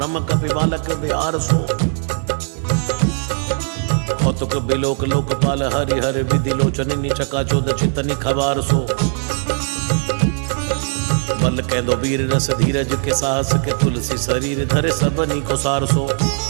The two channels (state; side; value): silent; left; 55 dB below the other